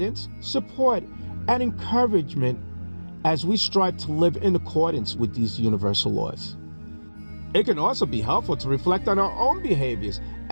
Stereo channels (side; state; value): both; inverted; correlation -1.00